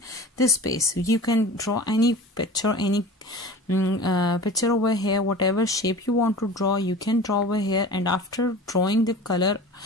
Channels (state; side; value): normal; both; correlation 0.37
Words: this space. You can draw any picture, any picture over here, whatever shape you want to draw, you can draw over here. And after drawing the color,